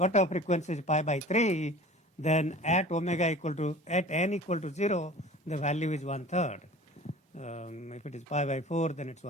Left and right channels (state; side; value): normal; both; correlation 0.42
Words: frequency is pi by 3, then at n equal to 0, the value is 1/3. If it is pi by 4, then it's